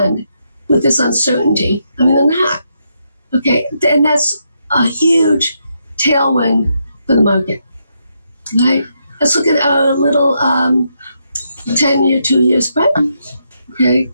with this uncertainty? I mean, they're not. Okay, and that's a huge tailwind for the market, right? Let's look at a little 10-year, 2-year spread, okay?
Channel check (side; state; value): both; inverted; correlation -0.80